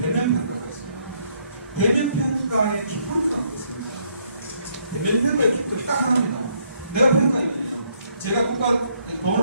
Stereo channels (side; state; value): both; inverted; correlation -0.70